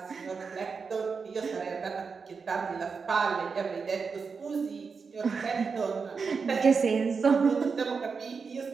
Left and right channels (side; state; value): left; quieter; 5.3 dB